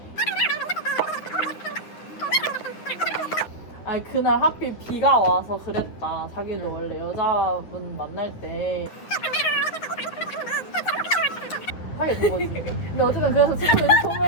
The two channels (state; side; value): late; right; 9.6 ms